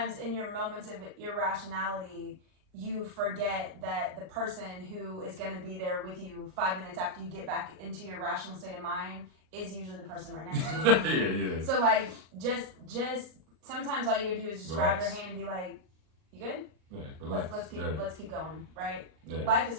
in your moments of irrationality, you forget that the person who is going to be there with you 5 minutes after you get back into your rational state of mind is usually the person right next to you. Yeah. So like, just sometimes all you gotta do is just grab their hand and be like, "You good? Yeah, relax. Let's keep going." Right? Yeah. Life is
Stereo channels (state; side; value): late; left; 39 ms